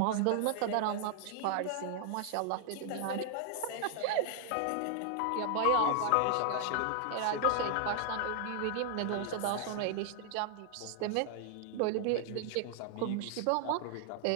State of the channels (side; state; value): both; different; correlation 0.00